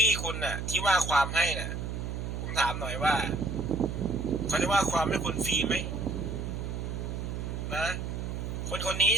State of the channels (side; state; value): right; noise; hum, 4 dB below the sound